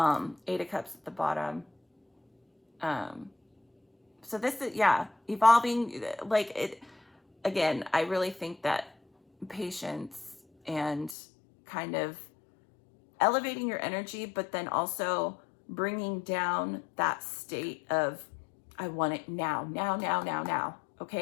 of Cups at the bottom. So this is, yeah, evolving, like it, again, I really think that patience and kind of elevating your energy, but then also bringing down that state of, I want it now,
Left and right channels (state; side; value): drops out; right; at 11.2 s